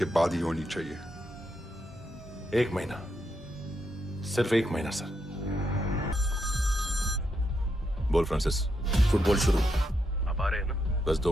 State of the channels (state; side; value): normal; both; correlation 0.81